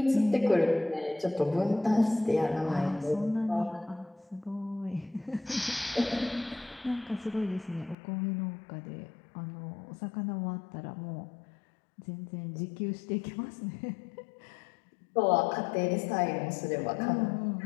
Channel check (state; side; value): drops out; right; at 8.0 s